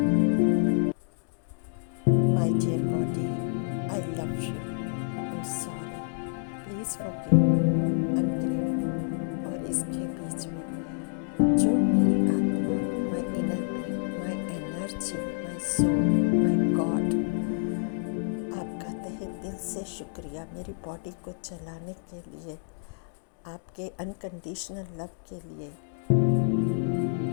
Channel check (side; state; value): right; silent; digital silence